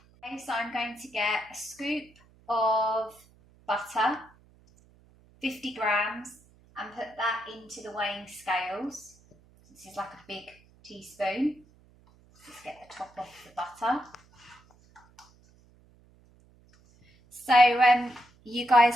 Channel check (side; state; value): right; noise; hum, 29 dB below the sound